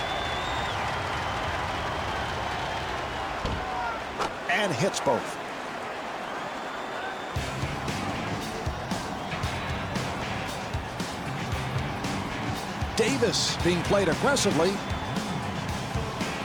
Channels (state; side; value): identical; both; correlation 1.00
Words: And hits both. Davis being played aggressively.